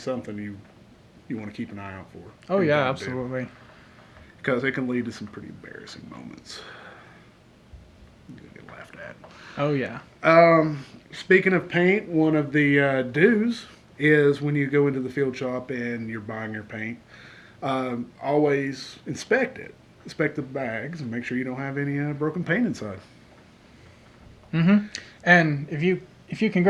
you want to keep an eye out for. Oh, yeah, absolutely. Because it can lead to some pretty embarrassing moments. You're going to get laughed at. Oh, yeah. Speaking of paint, one of the do's is when you go into the field shop and you're buying your paint, always inspect it. Inspect the bags and make sure you don't have any broken paint inside. Mm-hmm. And if you can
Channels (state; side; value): identical; both; correlation 1.00